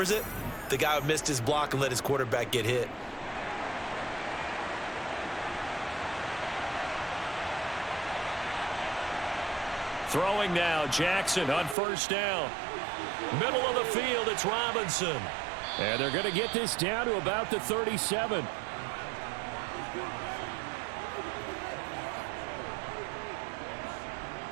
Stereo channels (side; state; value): left; drops out; at 11.8 s